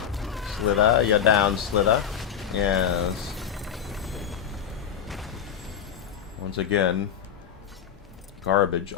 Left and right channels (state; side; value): quieter; right; 8.4 dB